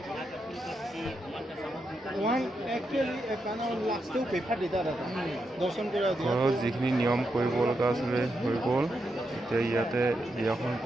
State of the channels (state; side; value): normal; both; correlation 0.84